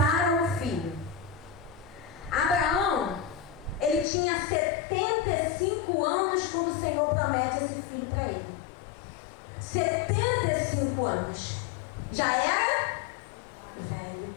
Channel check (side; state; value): right; drops out; at 4.0 s